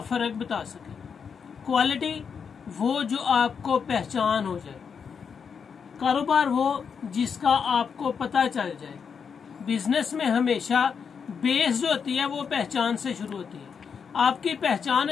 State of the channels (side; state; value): right; quieter; 6.4 dB